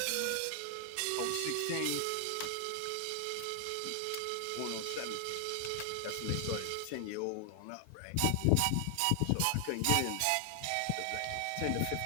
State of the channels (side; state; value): both; different; correlation 0.00